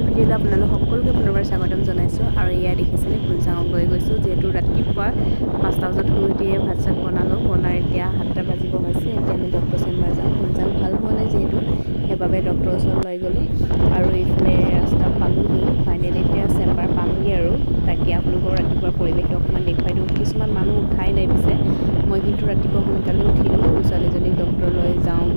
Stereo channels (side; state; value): both; inverted; correlation -1.00